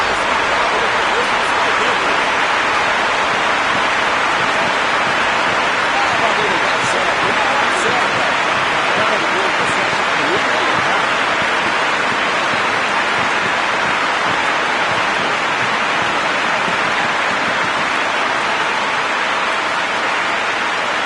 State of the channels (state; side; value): identical; both; correlation 1.00